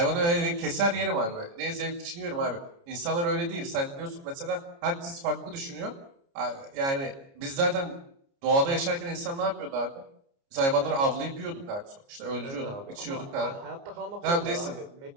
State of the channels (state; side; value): late; left; 29 ms